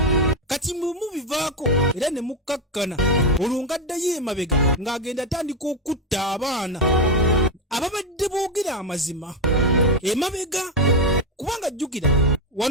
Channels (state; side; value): normal; both; correlation 0.09